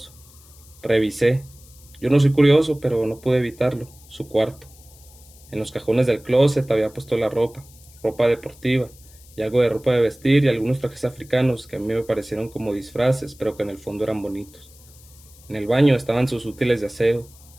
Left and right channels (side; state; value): left; noise; hiss, 24 dB below the sound